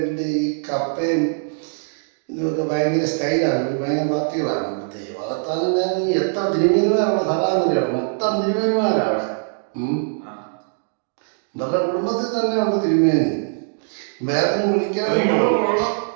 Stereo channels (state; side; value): silent; left; digital silence